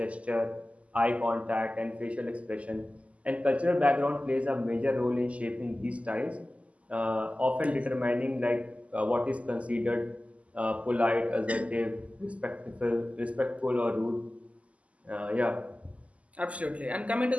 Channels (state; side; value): late; left; 0.066 ms